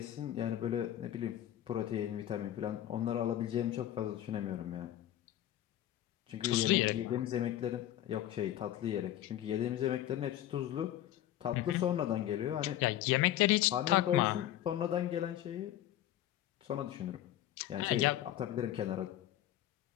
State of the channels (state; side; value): quieter; right; 12.6 dB